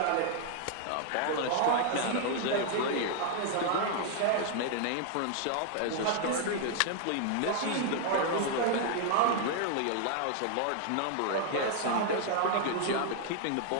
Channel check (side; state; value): both; different; correlation 0.00